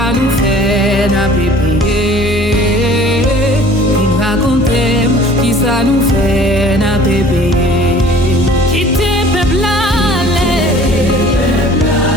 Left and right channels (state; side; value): normal; both; correlation 0.49